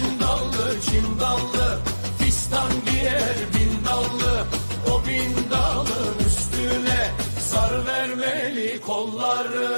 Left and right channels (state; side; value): inverted; both; correlation -1.00